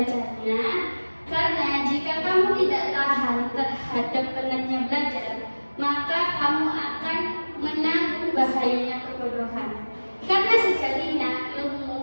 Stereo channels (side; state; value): both; inverted; correlation -1.00